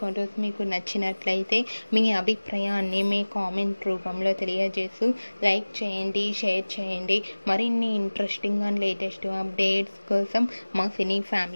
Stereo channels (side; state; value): both; inverted; correlation -1.00